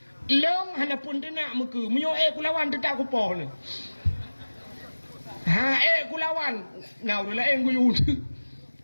Long han pun tenak meke. Menyo kulawan tetak kupoh ni. Kulawan. Nah, udah lah gue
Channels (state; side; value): inverted; both; correlation -1.00